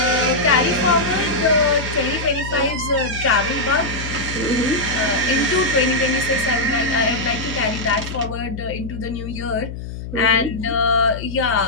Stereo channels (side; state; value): left; noise; hum, 9 dB below the sound